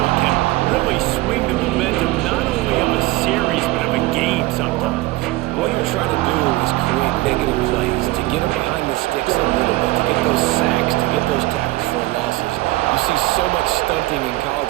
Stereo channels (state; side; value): quieter; left; 19.3 dB